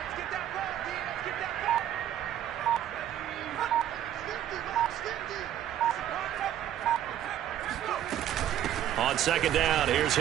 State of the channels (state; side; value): quieter; left; 11.2 dB